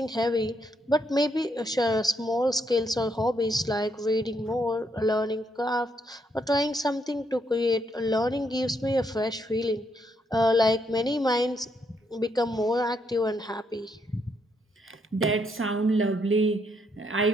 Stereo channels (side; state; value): both; normal; correlation 0.75